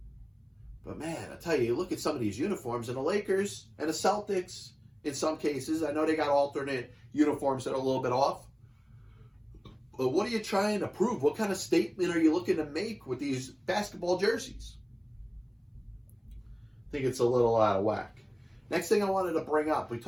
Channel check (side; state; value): both; identical; correlation 1.00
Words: But man, I tell you, you look at some of these uniforms, and the Lakers and the Celtics, in some cases, I know they got alternate uniforms that are a little bit off. But what are you trying to prove? What kind of statement are you looking to make with these basketball jerseys? I think it's a little out of whack. Next thing I wanted to bring up, we